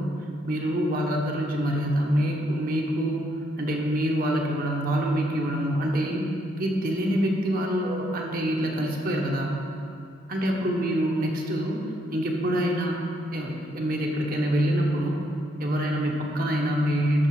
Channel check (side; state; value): both; normal; correlation 0.74